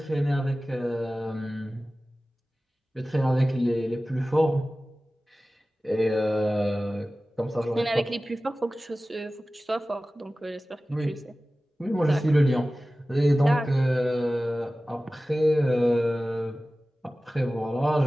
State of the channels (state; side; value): normal; both; correlation 0.96